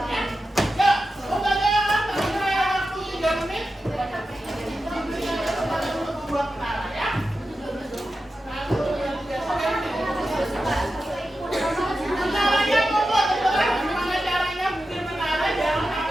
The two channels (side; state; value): both; normal; correlation 0.91